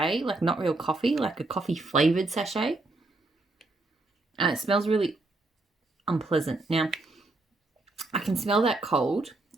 like not real coffee, like a coffee flavored sachet. And it smells really unpleasant. Now, I can smell that cold.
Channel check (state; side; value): quieter; left; 3.0 dB